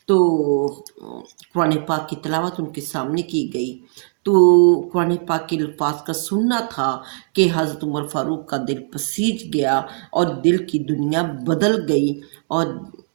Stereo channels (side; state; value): left; silent; digital silence